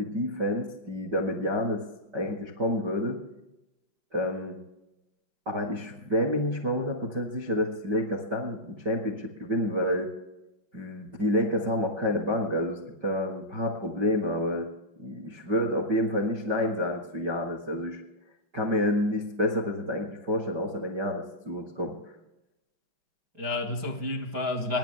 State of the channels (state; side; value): late; left; 5.3 ms